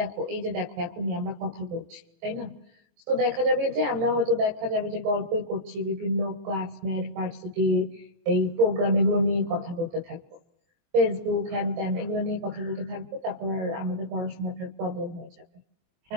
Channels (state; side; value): late; left; 24 ms